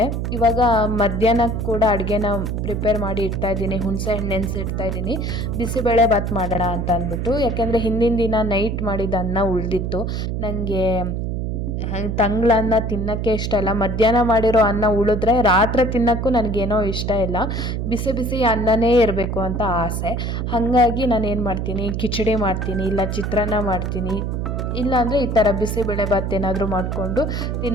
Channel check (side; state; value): right; noise; hum, 2 dB below the sound